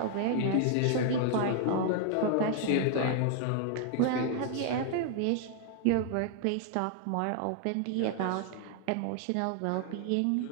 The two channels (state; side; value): different; both; correlation 0.00